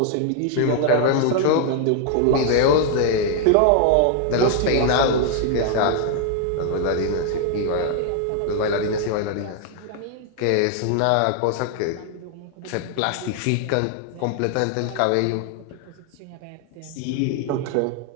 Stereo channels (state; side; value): different; both; correlation 0.00